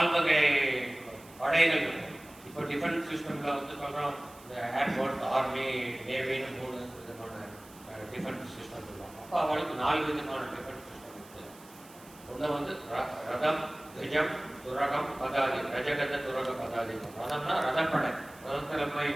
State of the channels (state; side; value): noise; right; hiss, 22 dB below the sound